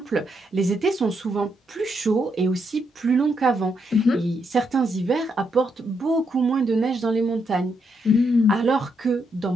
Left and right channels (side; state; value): both; normal; correlation 0.79